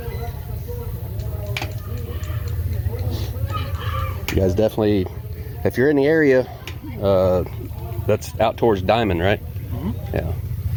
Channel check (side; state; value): both; identical; correlation 1.00